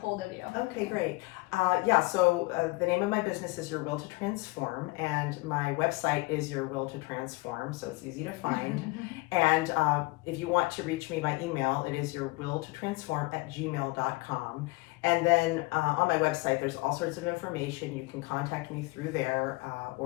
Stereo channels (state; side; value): quieter; right; 24.1 dB